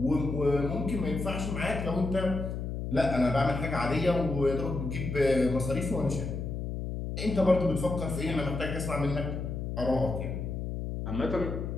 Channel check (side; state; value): left; noise; hum, 4 dB below the sound